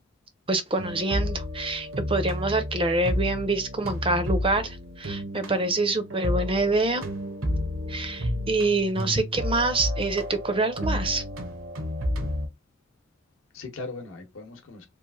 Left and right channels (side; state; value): both; normal; correlation 0.42